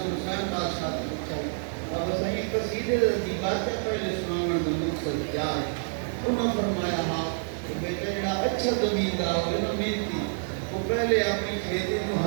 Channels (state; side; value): silent; left; digital silence